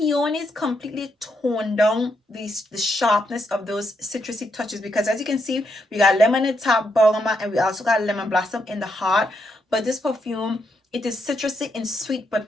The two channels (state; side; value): normal; both; correlation 0.79